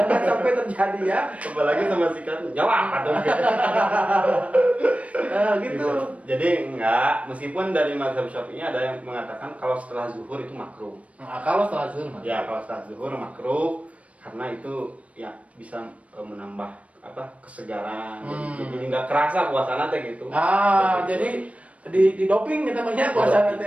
sampai terjadi ya. Apalagi sama sikatnya. Jawab atau gitu. Jadi enggak, meskipun dari mazhab Syafi'i ada yang mengatakan kalau setelah zuhur itu makruh. Kalau setelah zuhur makruh. Ya, kalau setelah zuhur makruh karena itu ya bisa menambah kesegaran. Jadi nggak kerasa puasana teh gitu. Jadi di doping kita namanya puasana teh.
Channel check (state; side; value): late; left; 0.065 ms